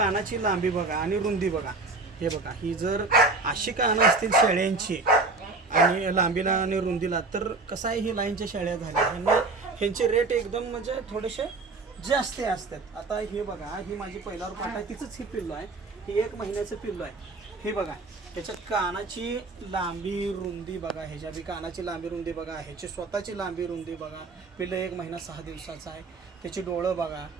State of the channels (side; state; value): left; quieter; 3.6 dB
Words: लांबी बघा आणि रुंदी बघा. हे बघा, ही जर अशी कानं असतील शेळ्यांची आणि लांबीला आणि रुंदीला, तर कसं आहे, ही लाईनच्या शेळ्या झाल्या. ह्यांचे रेट एकदम म्हणजे थोडेसे जास्त असतात. आता हे बघा, ही माझी पहिला पाट आहे, तिचंच ही पिल्लू आहे. ही 1 महिन्याचं पिल्लू आहे. हे बघा, ह्याच्या कानाची लांबी रुंदी बघा, ह्याच्या बी कानाची लांबी रुंदी बघा, ह्याची स्वतःची लांबी रुंदी बघा. पिल्लं 1 महिना 6 दिवसाचा आहे. त्याची डोळं बघा,